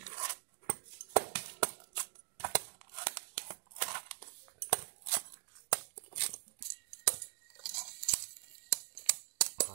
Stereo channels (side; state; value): left; silent; 50 dB below the other